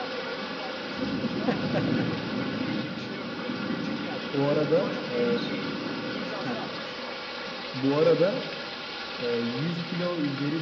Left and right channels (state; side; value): identical; both; correlation 1.00